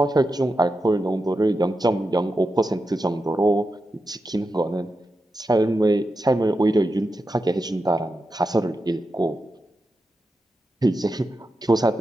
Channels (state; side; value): normal; both; correlation 0.89